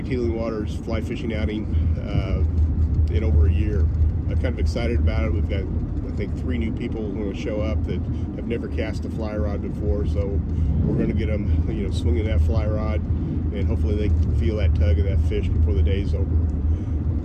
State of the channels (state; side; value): identical; both; correlation 1.00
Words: Healing Waters fly fishing outing in over a year. I'm kind of excited about it. We've got, I think, 3 new people who are going to show up that have never cast a fly rod before, so we're going to get them, swinging that fly rod, and hopefully they can feel that tug of that fish before the day's over.